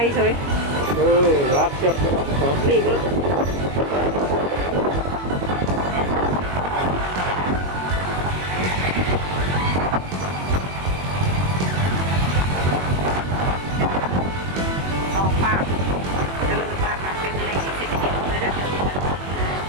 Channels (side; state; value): left; late; 21 ms